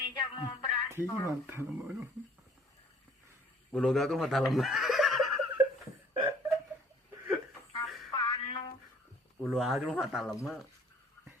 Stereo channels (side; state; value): both; normal; correlation 0.56